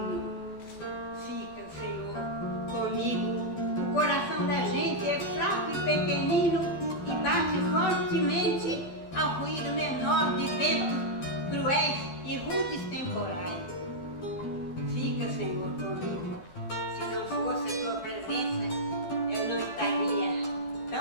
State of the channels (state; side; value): late; right; 12 ms